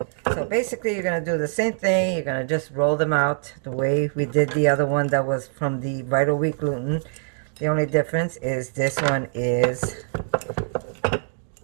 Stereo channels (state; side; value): silent; left; digital silence